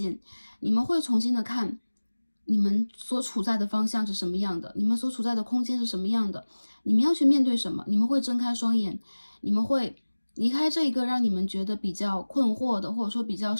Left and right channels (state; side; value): inverted; both; correlation -1.00